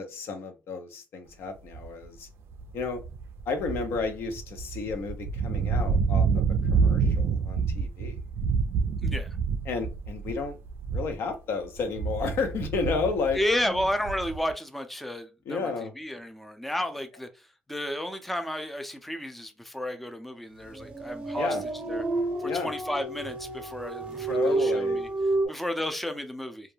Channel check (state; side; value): normal; both; correlation 0.64